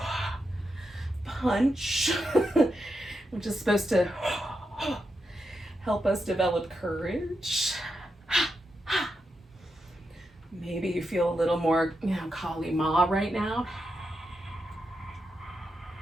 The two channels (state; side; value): normal; both; correlation 0.86